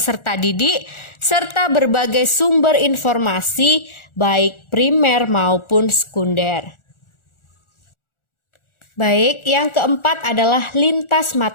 didik serta berbagai sumber informasi baik primer maupun sekunder. Baik, yang keempat adalah lintas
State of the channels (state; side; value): late; right; 1.4 ms